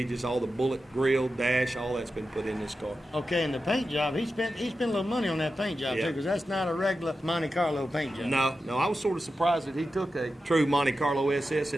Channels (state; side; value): normal; both; correlation 0.91